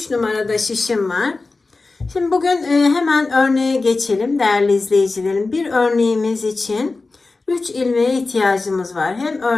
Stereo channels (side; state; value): right; quieter; 3.7 dB